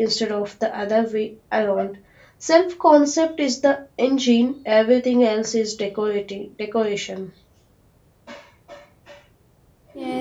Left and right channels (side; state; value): both; identical; correlation 1.00